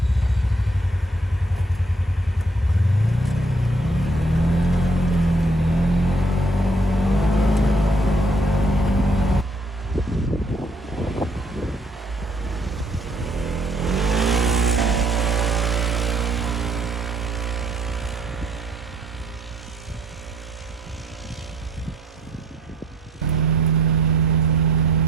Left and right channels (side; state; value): both; normal; correlation 0.64